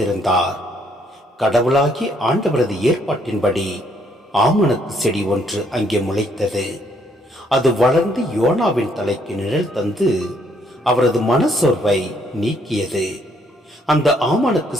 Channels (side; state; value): both; normal; correlation 0.69